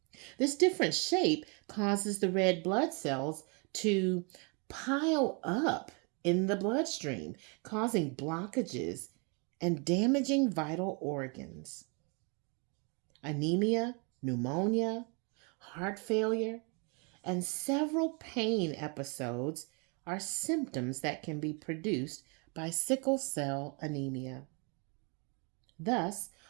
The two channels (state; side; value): quieter; left; 34.1 dB